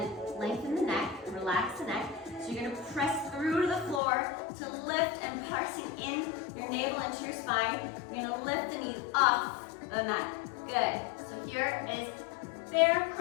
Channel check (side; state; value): right; drops out; at 4.0 s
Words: lengthen the neck, relax the neck. So you're gonna press through to the floor to lift and pressing in your navel into your spine. You're gonna lift the knees off the mat. Good. So here is bear